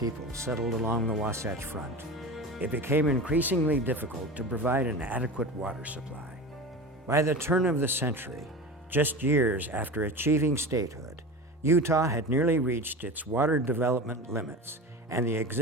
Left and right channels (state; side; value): normal; both; correlation 0.30